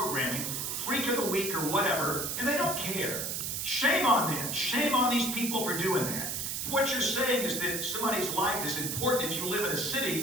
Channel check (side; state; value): right; noise; hiss, 2 dB below the sound